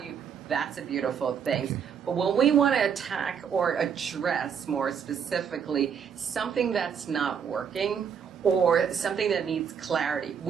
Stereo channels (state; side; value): quieter; left; 7.4 dB